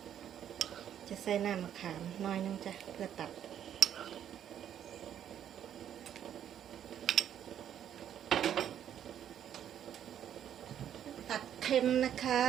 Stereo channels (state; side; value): quieter; left; 9.9 dB